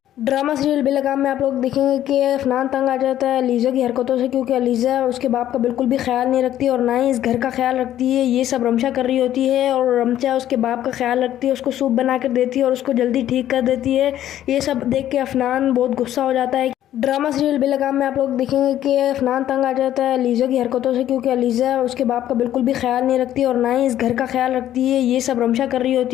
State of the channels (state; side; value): quieter; right; 12.1 dB